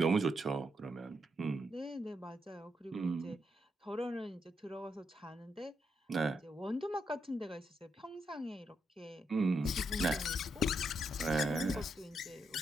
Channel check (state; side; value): normal; both; correlation 0.80